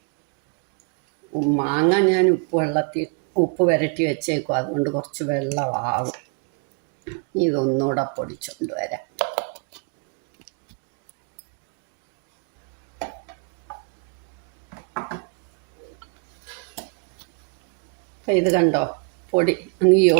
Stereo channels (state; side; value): quieter; left; 36.9 dB